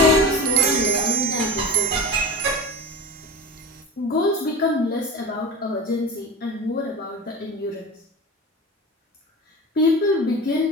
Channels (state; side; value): normal; both; correlation 0.28